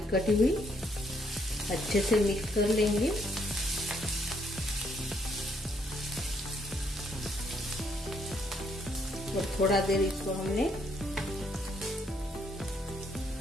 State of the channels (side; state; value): both; normal; correlation 0.71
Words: कटी हुई। अच्छे से मिक्स कर लेंगे। और थोड़ा देर इसको हमने